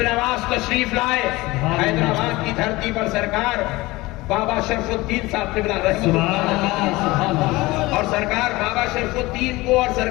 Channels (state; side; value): quieter; right; 20.7 dB